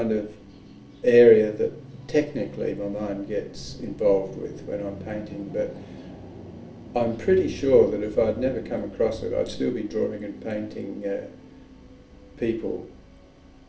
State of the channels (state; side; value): identical; both; correlation 1.00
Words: of area that technically my mind gets involved with when I'm painting, but I'm pretty sure that if I'd never come across it, I'd still be drawing and painting people,